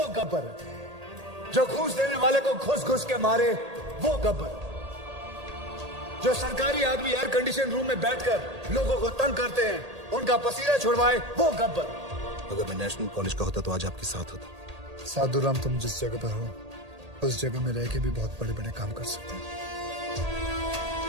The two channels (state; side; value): late; left; 1.8 ms